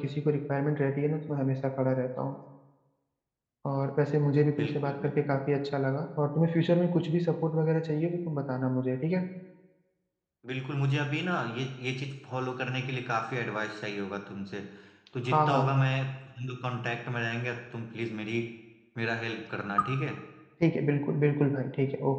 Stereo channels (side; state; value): both; identical; correlation 1.00